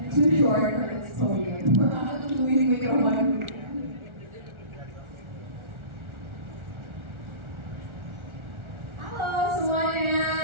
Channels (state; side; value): late; left; 1.4 ms